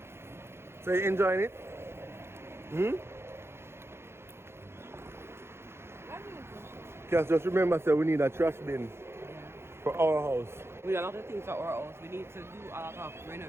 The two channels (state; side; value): late; left; 0.12 ms